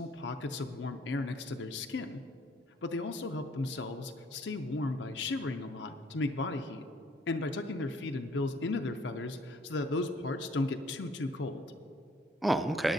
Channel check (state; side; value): normal; both; correlation 0.60